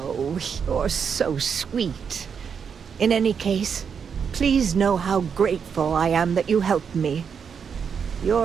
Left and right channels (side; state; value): left; quieter; 6.8 dB